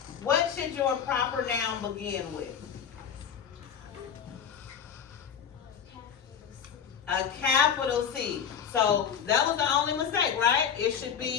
what should your proper noun begin with? A capital C. So that was the only mistake, right? It should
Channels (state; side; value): quieter; right; 7.7 dB